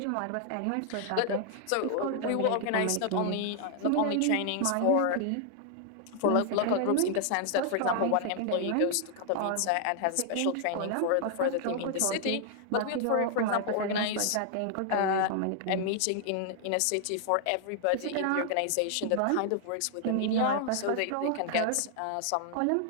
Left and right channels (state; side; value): different; both; correlation 0.00